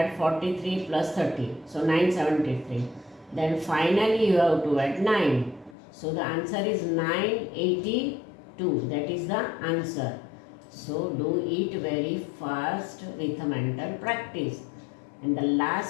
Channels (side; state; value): right; drops out; at 5.8 s